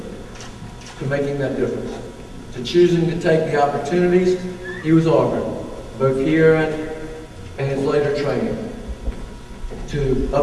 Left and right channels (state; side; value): identical; both; correlation 1.00